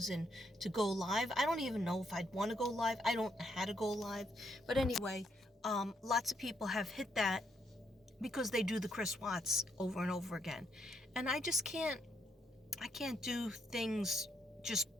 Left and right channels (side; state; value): both; normal; correlation 0.75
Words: to go live. I don't even know if I'd want to go live. I don't know how to go live. But anyway, lots of people have hit that because they do the Chris Watts over and over again. And I just can't do things just